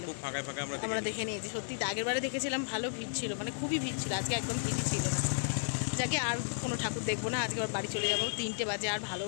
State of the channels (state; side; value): silent; right; digital silence